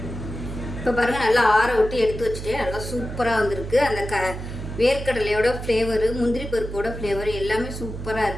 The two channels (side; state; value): right; noise; hum, 8 dB below the sound